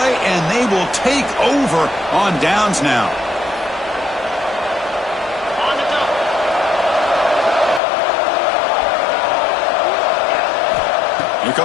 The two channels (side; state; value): right; drops out; at 7.8 s